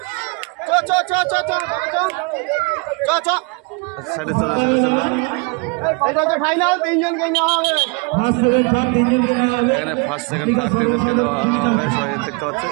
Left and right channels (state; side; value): quieter; left; 31.4 dB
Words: সাইডে চল এখানে ফার্স্ট সেকেন্ড থার্ড তিনজনকে দেওয়া হবে, সবাই দেখতে পাচ্ছেন।